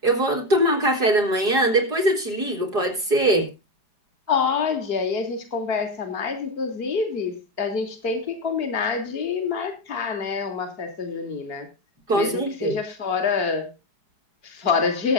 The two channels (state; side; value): late; left; 4.8 ms